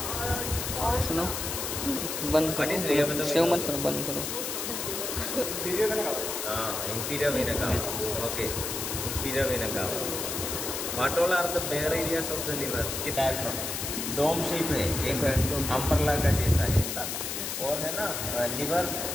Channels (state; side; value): noise; left; hiss, 3 dB below the sound